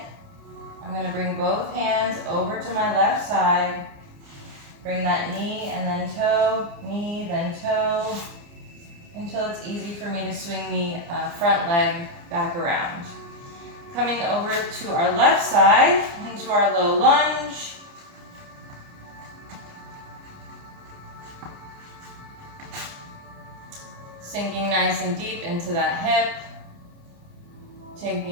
I'm going to bring both hands over to my left side. Bring that knee and then toe, knee, then toe, until it's easy for me to swing the front leg back around. Coming over to our left side, into our low lunge. Sinking nice and deep into that hip.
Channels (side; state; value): left; late; 29 ms